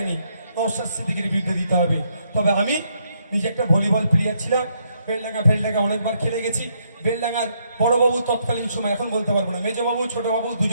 নওশাদ সিদ্দিকীর বিরুদ্ধে দিতে হবে। তবে আমি নিজে একটা ভলিবল প্লেয়ার ছিলাম, বেলডাঙ্গা অনেকবার খেলে গেছি। বেলডাঙ্গার বড়বাবু তৎকালীন সময়, এখন বলতে পারবো না, মেজবাবু ছোটবাবু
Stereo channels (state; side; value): inverted; both; correlation -0.74